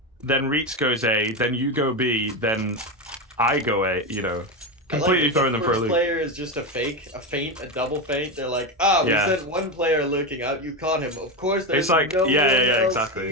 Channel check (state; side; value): normal; both; correlation 0.14